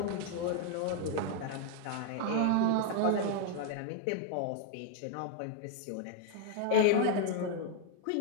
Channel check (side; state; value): both; different; correlation 0.00